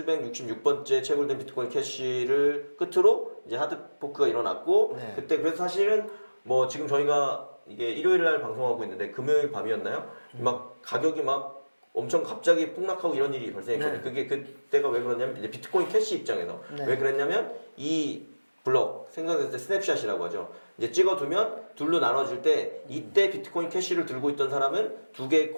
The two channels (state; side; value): inverted; both; correlation -1.00